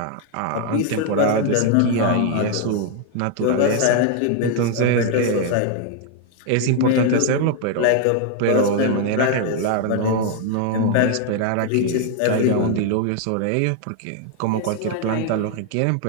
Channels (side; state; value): both; different; correlation 0.00